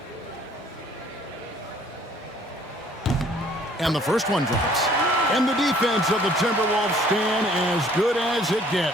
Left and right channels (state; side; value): normal; both; correlation 0.57